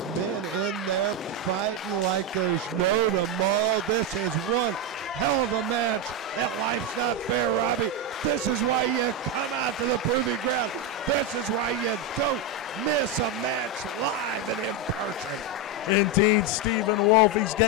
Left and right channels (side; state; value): both; normal; correlation 0.08